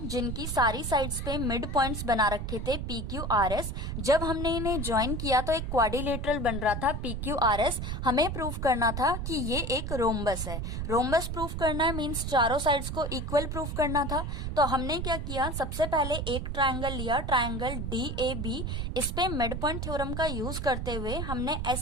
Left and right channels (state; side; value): noise; right; rumble, 4 dB below the sound